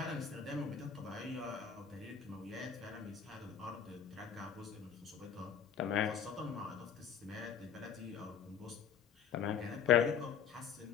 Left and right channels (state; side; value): quieter; right; 7.6 dB